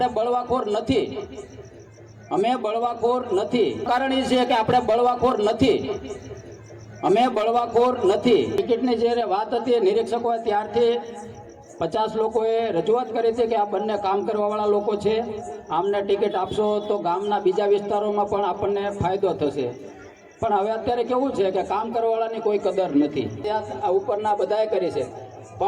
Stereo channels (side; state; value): both; identical; correlation 1.00